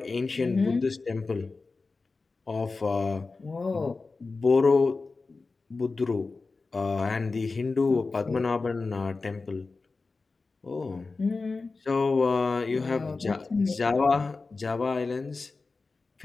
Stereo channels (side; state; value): right; quieter; 3.9 dB